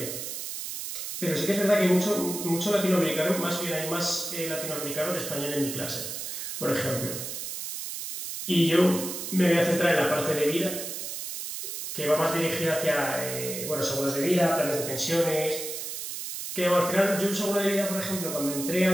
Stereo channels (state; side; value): noise; right; hiss, 6 dB below the sound